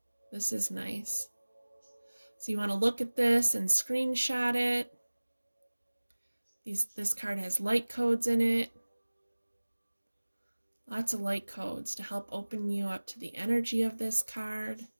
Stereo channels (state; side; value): inverted; both; correlation -1.00